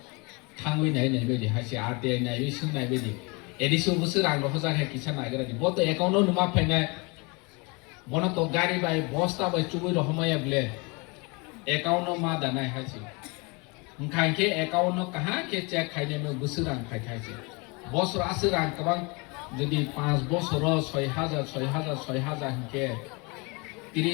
থাঙ্গই নাই নাই বেদি হাসি আরটিআই নাই বিসুং নাই বেদি এডিসো বছর রাং রহজা হে কিছা নাগরা দি বত অ্যাকাউন্ট নুমা ফাইনাই বনা তো গাড়ি বাই বস্তা বাই চুবই রহমায়া বলে অ্যাকাউন্ট মা দানাই হাসি কাঙ্গে অ্যাকাউন্ট কাহা কে চেক খাইনে মে বছর রাং খাইছে বছর আসে রাং কবাং যদি 5 বছর 6000 কে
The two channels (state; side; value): quieter; right; 29.0 dB